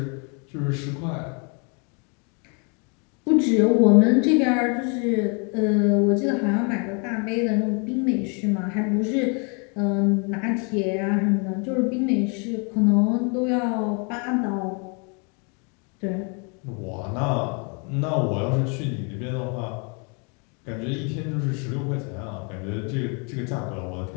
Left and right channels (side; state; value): right; quieter; 35.5 dB